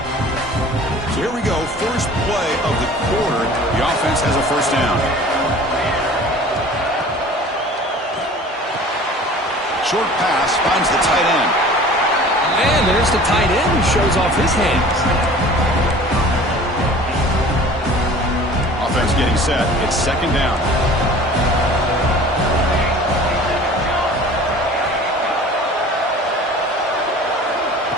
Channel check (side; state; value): both; normal; correlation 0.44